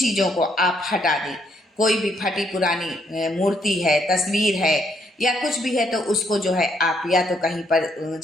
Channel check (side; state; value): both; normal; correlation 0.72